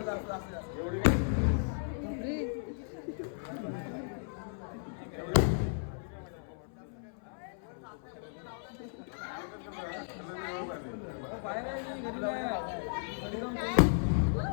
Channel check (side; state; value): right; silent; 54 dB below the other